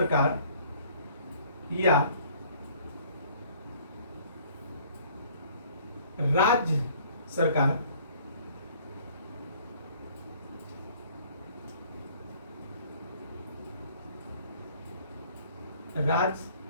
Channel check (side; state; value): both; inverted; correlation -0.56